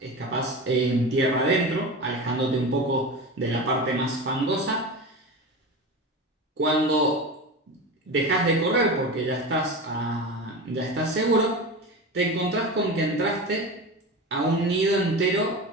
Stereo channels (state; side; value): normal; both; correlation 0.26